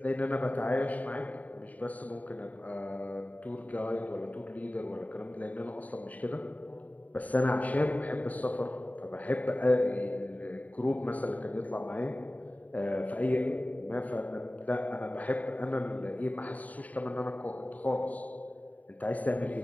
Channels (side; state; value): right; late; 0.072 ms